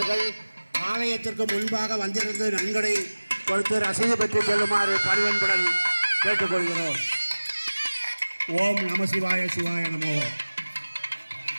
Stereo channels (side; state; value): both; inverted; correlation -1.00